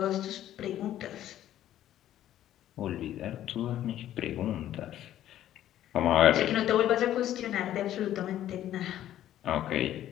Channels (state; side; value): quieter; right; 12.3 dB